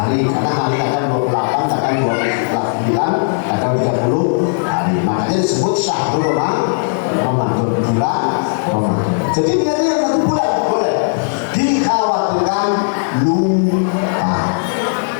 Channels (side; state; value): right; silent; digital silence